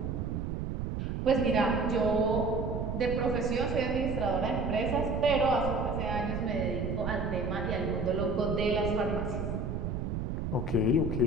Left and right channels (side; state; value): right; noise; rumble, 2 dB below the sound